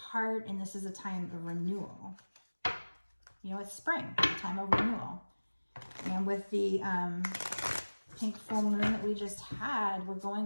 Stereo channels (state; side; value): inverted; both; correlation -1.00